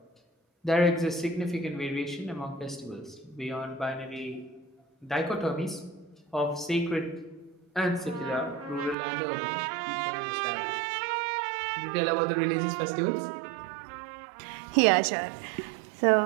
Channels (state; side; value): drops out; left; at 9.0 s